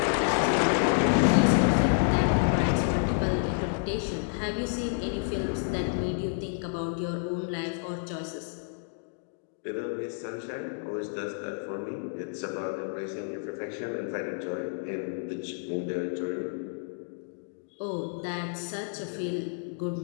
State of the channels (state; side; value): silent; right; digital silence